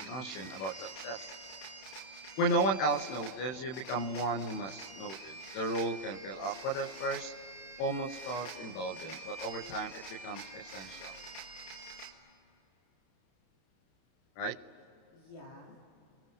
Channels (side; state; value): right; late; 32 ms